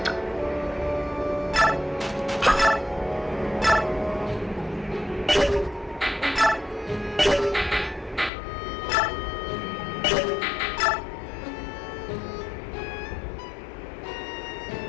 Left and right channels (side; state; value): right; drops out; at 8.3 s